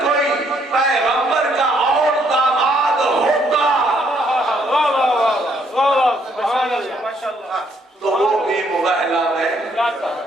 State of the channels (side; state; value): both; normal; correlation 0.69